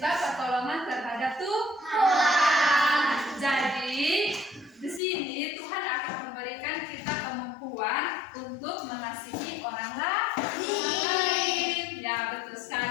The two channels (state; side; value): drops out; right; at 5.0 s